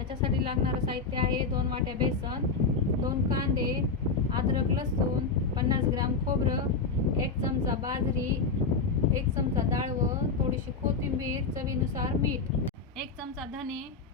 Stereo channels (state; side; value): quieter; right; 4.4 dB